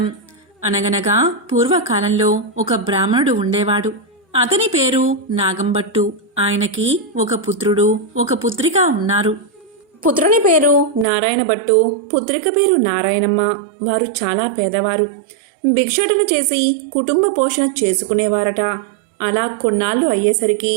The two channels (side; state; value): left; drops out; at 11.1 s